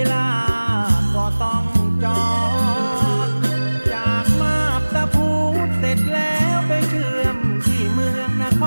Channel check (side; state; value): both; inverted; correlation -1.00